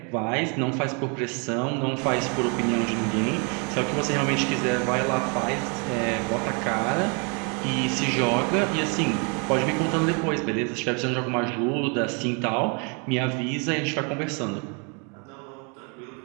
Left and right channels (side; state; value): left; quieter; 34.7 dB